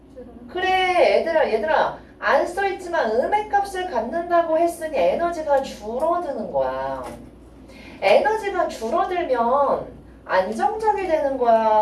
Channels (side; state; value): both; identical; correlation 1.00